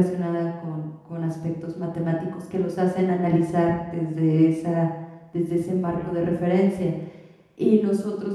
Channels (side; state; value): both; identical; correlation 1.00